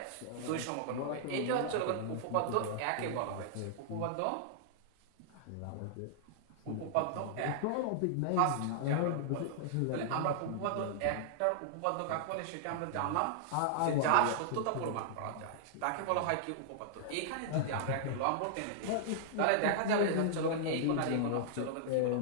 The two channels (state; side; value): different; both; correlation -0.01